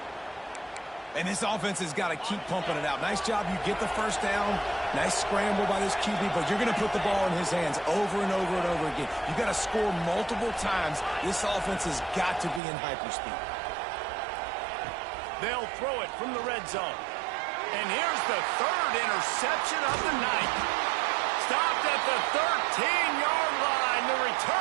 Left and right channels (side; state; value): left; drops out; at 12.6 s